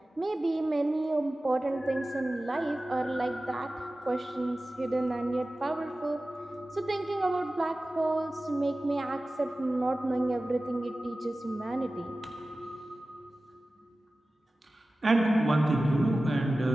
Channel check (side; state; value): both; normal; correlation 0.96